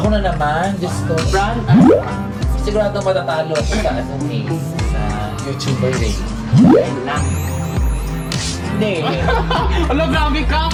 na naman, Diyos ko. Brand? Sigurado matatalo ako sa sa YouTuber race. Ayun lang. Hindi. Ala, grabe ka!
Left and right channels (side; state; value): both; identical; correlation 1.00